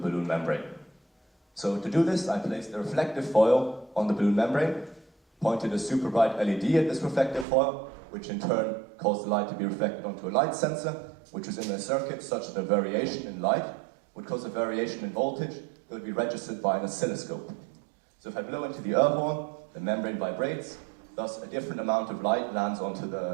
membrane. So to do this, I placed a reflective foil on the balloon membrane, pointed a super bright LED at this reflective foil, which in turn caused the light to be reflected onto a light sensor, which was in a circuit such that a variation in light would cause a variation in voltage that would be registered by an oscilloscope. So if I blow into the air horn, the membrane vibrates, thus a different amount of light lands onto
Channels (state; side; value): drops out; left; at 7.5 s